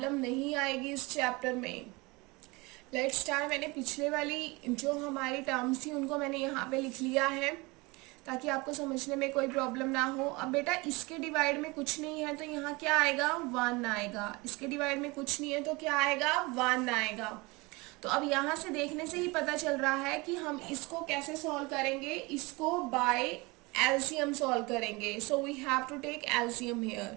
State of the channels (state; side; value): quieter; left; 24.8 dB